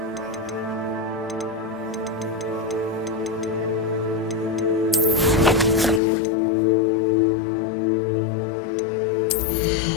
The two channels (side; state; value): right; drops out; at 6.0 s